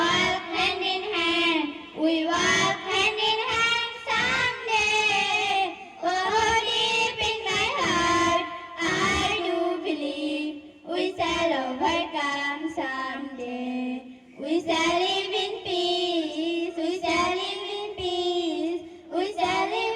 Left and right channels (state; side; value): identical; both; correlation 1.00